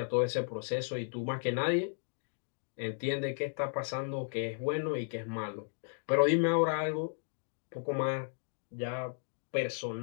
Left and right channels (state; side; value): silent; right; digital silence